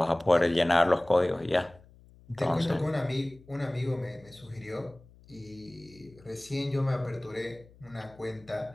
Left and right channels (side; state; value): left; noise; hum, 25 dB below the sound